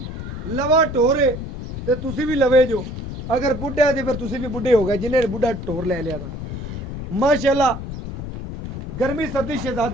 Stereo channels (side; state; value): left; noise; rumble, 7 dB below the sound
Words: ਲਵਾ ਢੋਰੇ ਤੇ ਤੁਸੀਂ ਵੀ ਲਵੇ ਜੋ, ਅਗਰ ਬੁੱਢਾ ਤੇ ਫਿਰ ਤੁਸੀਂ ਵੀ ਬੁੱਢੇ ਹੋ ਗਏ ਜਿਹਨੇ ਬੁੱਢਾ ਢੋਰ ਲੈ ਲਿਆ ਤਾਂ ਮਾਸ਼ਾਅੱਲਾ। गर्मी सर्दी